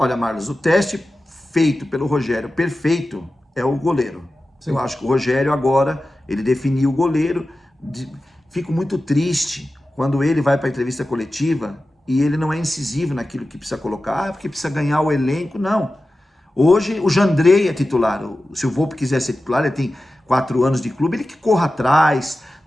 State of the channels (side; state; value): both; normal; correlation 0.94